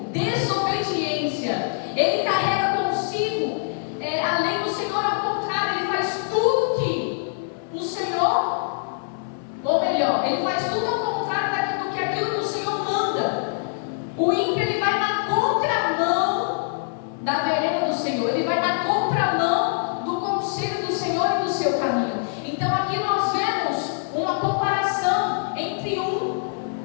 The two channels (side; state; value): right; silent; 63 dB below the other